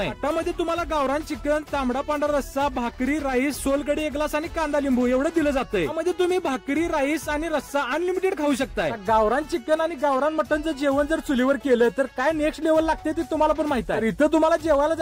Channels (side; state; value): both; identical; correlation 1.00